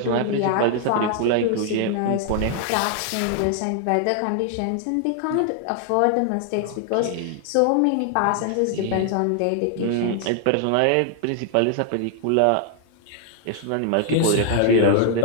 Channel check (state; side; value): different; both; correlation 0.00